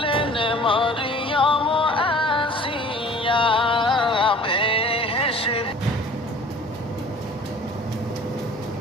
মরিয়ম আসিয়া বেহেশত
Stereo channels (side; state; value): both; normal; correlation 0.48